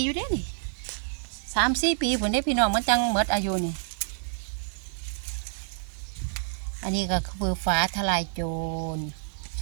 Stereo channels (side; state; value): left; silent; digital silence